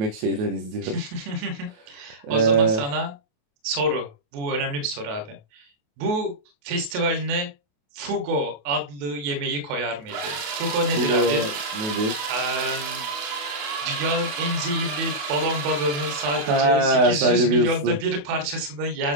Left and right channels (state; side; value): late; left; 28 ms